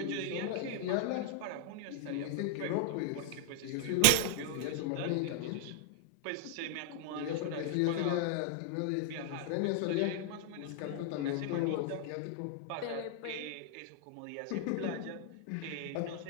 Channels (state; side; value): different; both; correlation -0.01